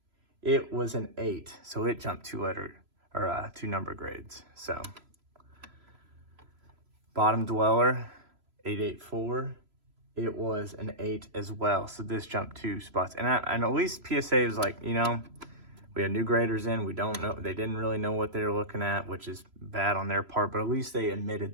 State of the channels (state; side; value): late; left; 3.0 ms